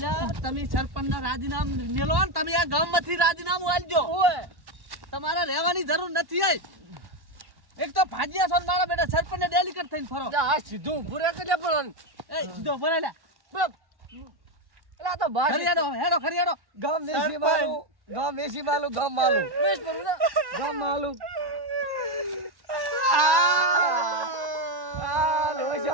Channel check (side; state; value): left; late; 1.1 ms